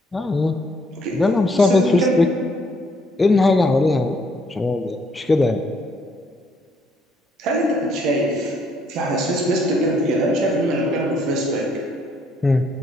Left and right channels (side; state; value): both; normal; correlation 0.68